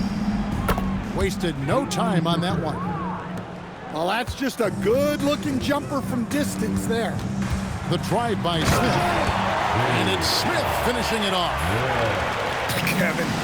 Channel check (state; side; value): identical; both; correlation 1.00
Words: Wasted no time on that one. Well, that's just a good-looking jumper from distance there. The drive by Smith. And it's Smith finishing it off. Kevin,